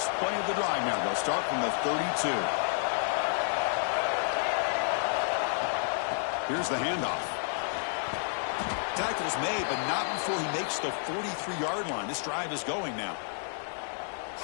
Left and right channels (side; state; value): right; silent; digital silence